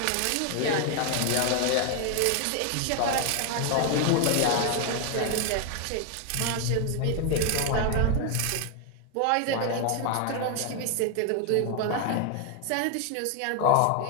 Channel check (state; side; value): different; both; correlation 0.01